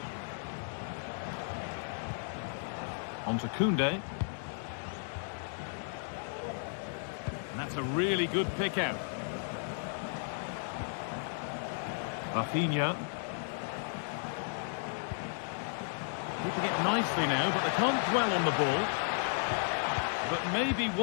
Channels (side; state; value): right; silent; digital silence